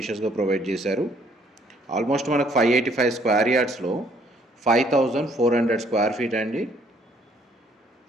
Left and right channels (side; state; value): both; normal; correlation 0.64